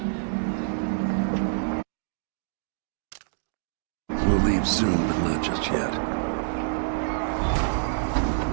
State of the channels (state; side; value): silent; left; digital silence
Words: We'll leave soon, but not just yet.